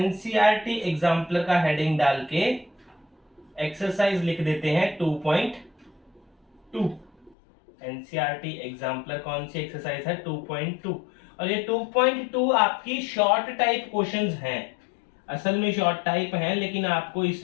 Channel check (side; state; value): right; drops out; at 7.4 s